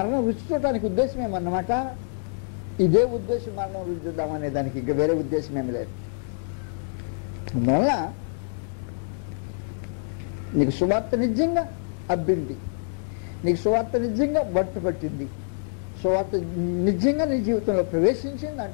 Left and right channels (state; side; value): silent; right; digital silence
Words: రుచి చూడటానికి ఉద్దేశం ఏమన్నమాట. ఇదే ఉద్దేశం మరణం రుచి చూద్దామనే దానికి ఇంకా వేరే ఉద్దేశం ఏమి లేదు. అందువల్ల నీకు సువార్త నిజంగా అబ్బింది, నీకు సువార్త నిజంగా పట్టింది, సువార్త నిజంగా నీ జీవితంలో ప్రవేశించింది